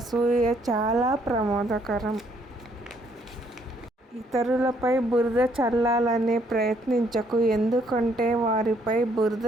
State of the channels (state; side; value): normal; both; correlation 0.68